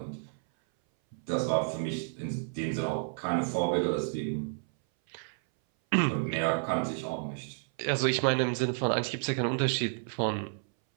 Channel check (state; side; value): silent; left; 57 dB below the other